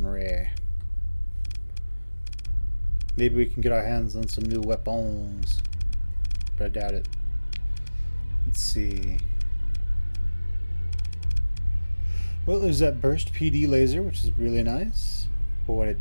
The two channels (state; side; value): inverted; both; correlation -1.00